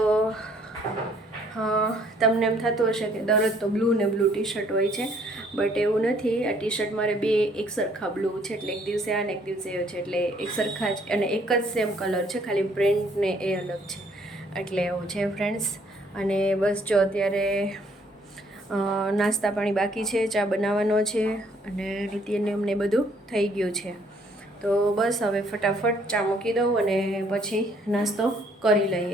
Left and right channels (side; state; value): both; normal; correlation 0.64